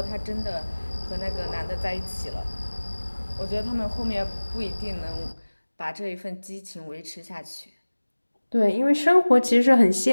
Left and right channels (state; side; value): inverted; both; correlation -1.00